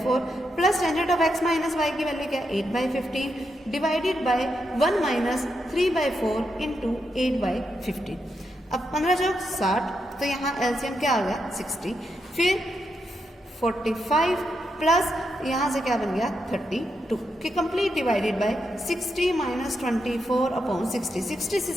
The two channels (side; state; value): both; normal; correlation 0.83